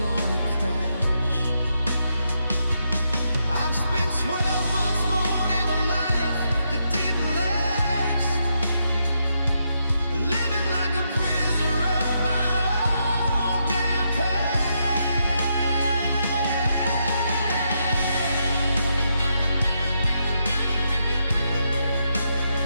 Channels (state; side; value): inverted; both; correlation -0.81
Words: gonna crash. I've spent 12 months more in a life that didn't last, living like a prisoner of my own damn